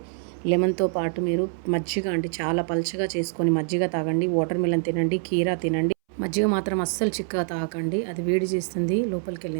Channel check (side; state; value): left; silent; 62 dB below the other